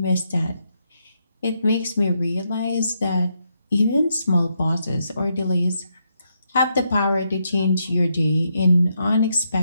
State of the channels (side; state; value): both; inverted; correlation -0.79